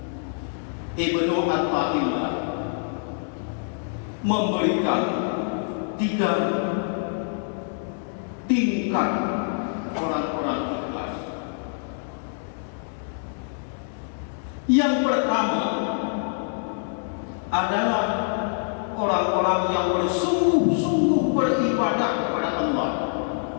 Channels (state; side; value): silent; right; digital silence